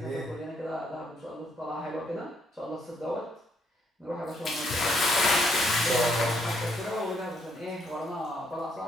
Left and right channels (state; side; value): normal; both; correlation 0.72